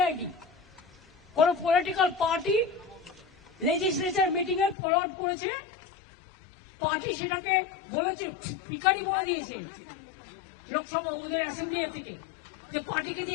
কোন পলিটিক্যাল পার্টি লেজিসলেচার মিটিং এ ফরওয়ার্ড করেছে, পার্টি সেটাকে বলেছে, পিকারি বলে দিয়েছে। লোকসভা ওদের অ্যাসেম্বলি থেকে যে পার্টিকে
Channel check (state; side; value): drops out; right; at 4.8 s